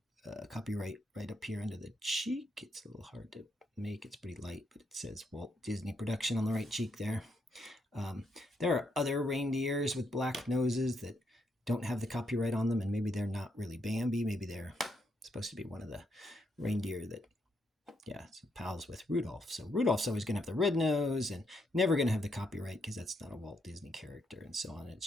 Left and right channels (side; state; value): both; normal; correlation 0.78